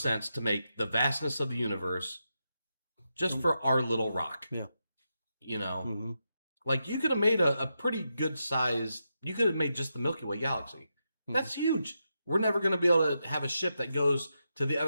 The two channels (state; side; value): inverted; both; correlation -0.86